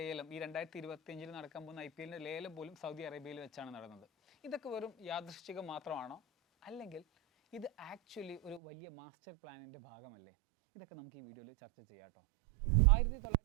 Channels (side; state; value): left; drops out; at 8.6 s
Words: ഈ 2025 നടക്കാൻ പോകുന്ന IPL ലേലം പോലും സൗദി അറേബ്യയിൽ വെച്ചാണ് നടന്നത്. ഇതൊക്കെ വെറും യാദൃശ്ചികം മാത്രമാണോ, അല്ലെങ്കിൽ ഇത് ആക്ച്വലി ഒരു വലിയ മാസ്റ്റർ പ്ലാനിൻ്റെ ഭാഗമല്ലേ? ഇതൊക്കെ നമുക്ക് ഈ വീഡിയോയിൽ ചർച്ച ചെയ്യാം കേട്ടോ.